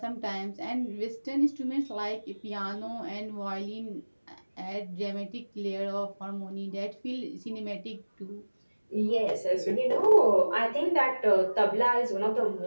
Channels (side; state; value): both; inverted; correlation -1.00